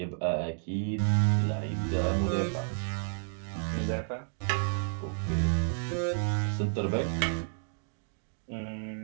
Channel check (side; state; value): left; silent; digital silence